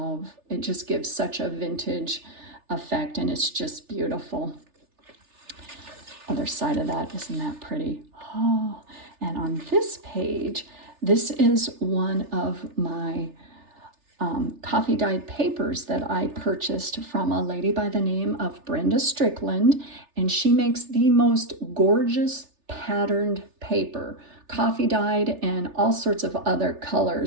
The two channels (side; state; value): left; late; 3.4 ms